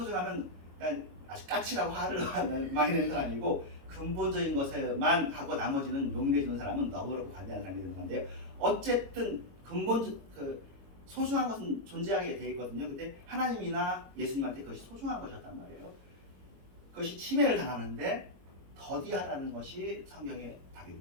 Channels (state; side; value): late; left; 22 ms